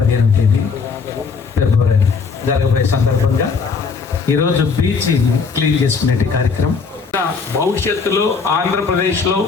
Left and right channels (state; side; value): quieter; right; 5.2 dB